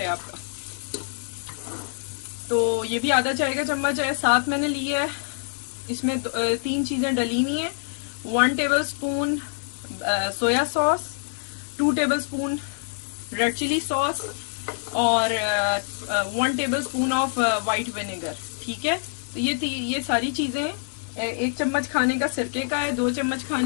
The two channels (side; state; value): right; silent; 56 dB below the other